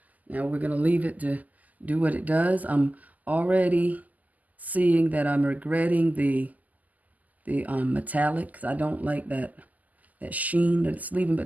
Now we're going to leave it to do what it does. I'm already seeing that I'm regretting the metallic, because I don't like that sheen that it's leaving,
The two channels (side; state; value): left; late; 0.079 ms